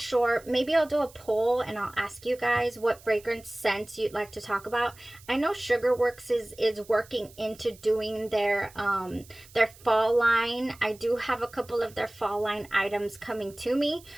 Maybe I'll do a poll and I'll ask you guys what fragrance scents you'd like to talk about. I know Sugarworks is working into doing their fall line. I do have a couple of their fall line items coming to me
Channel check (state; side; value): noise; right; hiss, 23 dB below the sound